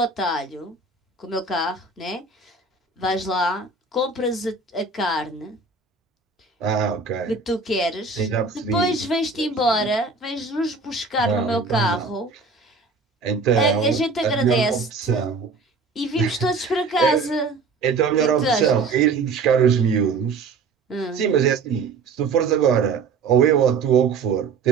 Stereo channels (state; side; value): quieter; left; 4.4 dB